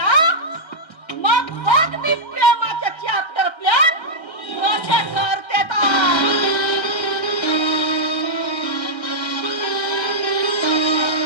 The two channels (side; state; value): right; late; 1.3 ms